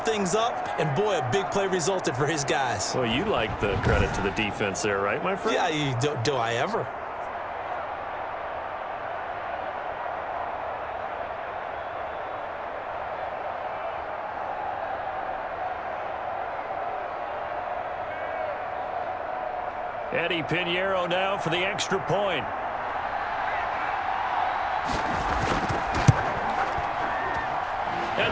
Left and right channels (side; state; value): both; identical; correlation 1.00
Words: things up, and boy, a big play resulted for his guys. Well, you like the credit to the defense there, right, my friend? Yeah, do I ever? Eddie Pinheiro now for the extra point.